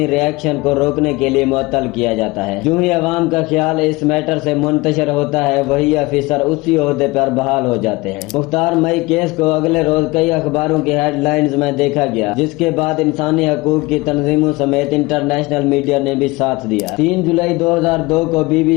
ریئیکشن کو روکنے کے لیے معطل کیا جاتا ہے۔ جو ہی عوام کا خیال اس میٹر سے منتشر ہوتا ہے وہی افیسر اسی عہدے پر بحال ہو جاتے ہیں۔ مختار مئی کیس کو اگلے روز کئی اخباروں کی ہیڈ لائنز میں دیکھا گیا، جس کے بعد انسانی حقوق کی تنظیموں سمیت انٹرنیشنل میڈیا نے بھی ساتھ دیا۔ 3 جولائی 2002 کو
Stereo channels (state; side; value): quieter; right; 22.6 dB